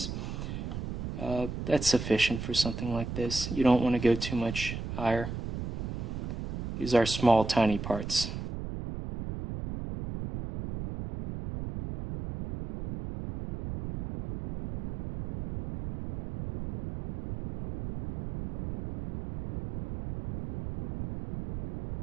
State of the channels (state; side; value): noise; right; rumble, 6 dB below the sound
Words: That's sufficient for something like this. You don't want to go too much higher. These are small, tiny parts.